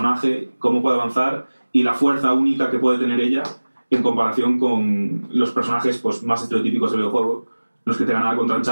cómo puede avanzar y la fuerza única que puede tener ella en comparación con los personajes pues, más estereotípicos del videojuego, los que te ganan contra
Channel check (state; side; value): inverted; both; correlation -1.00